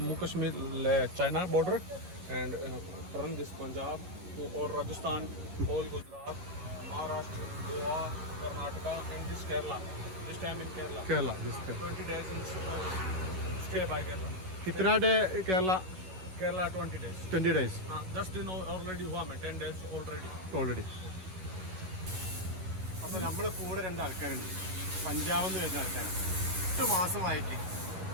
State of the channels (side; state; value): left; late; 11 ms